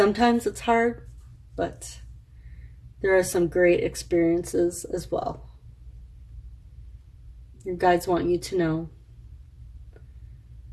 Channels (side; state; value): both; identical; correlation 1.00